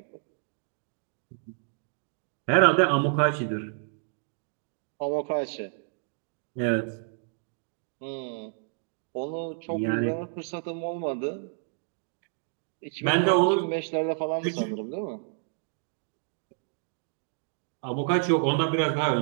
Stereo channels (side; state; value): left; silent; digital silence